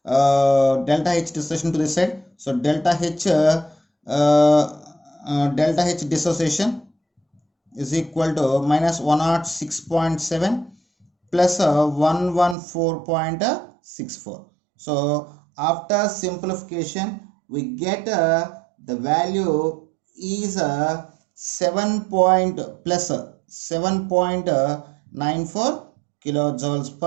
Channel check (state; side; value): drops out; left; at 12.6 s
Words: delta H dissociation to this side. So delta H dissociation is equal to minus 106.7 plus 114.64. So after simplification we get the value is 7.94 kilojoules